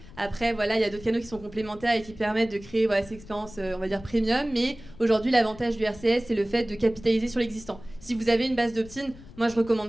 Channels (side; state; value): left; noise; rumble, 19 dB below the sound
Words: Après, voilà, il y a d'autres canaux qui sont complémentaires et qui permettent de créer cette expérience, on va dire, premium. Mais aujourd'hui, l'avantage du RCS, c'est le fait de capitaliser sur l'existant. Si vous avez une base d'opt-in, moi, je